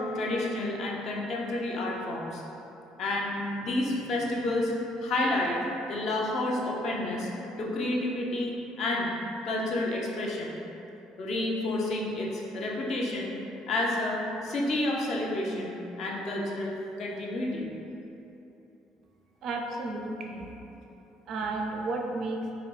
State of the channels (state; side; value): normal; both; correlation 0.65